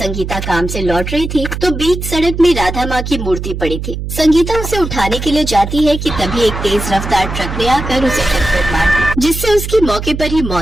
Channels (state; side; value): noise; right; hum, 6 dB below the sound